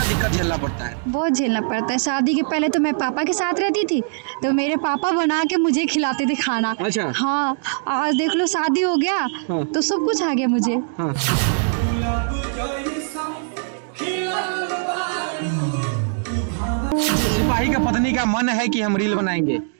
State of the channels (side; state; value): left; silent; digital silence